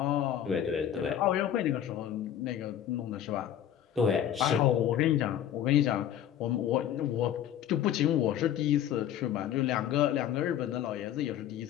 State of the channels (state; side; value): quieter; right; 10.5 dB